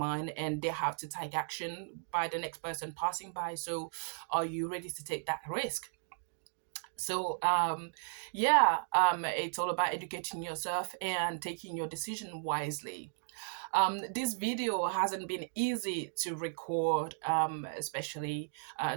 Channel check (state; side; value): silent; left; digital silence